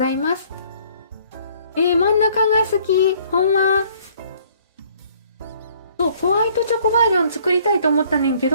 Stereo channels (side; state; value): both; inverted; correlation -0.60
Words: います。真ん中が好き。ほんま。そう、ホワイトチョコバージョン作りたいと思ったねんけ